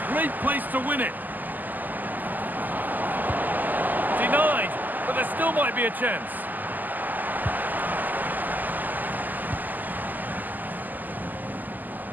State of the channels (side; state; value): left; late; 0.085 ms